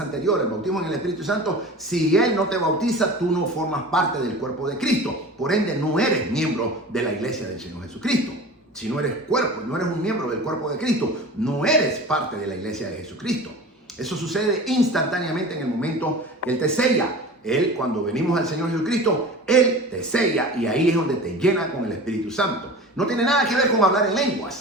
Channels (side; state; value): both; normal; correlation 0.36